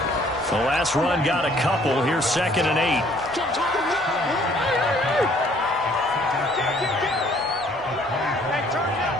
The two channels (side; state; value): both; normal; correlation 0.60